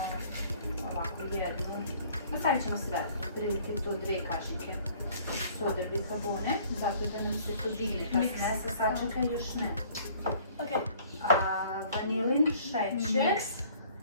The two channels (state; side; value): inverted; both; correlation -0.55